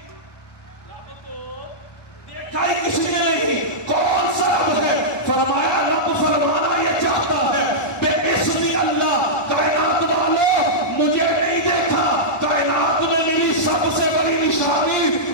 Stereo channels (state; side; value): late; right; 1.2 ms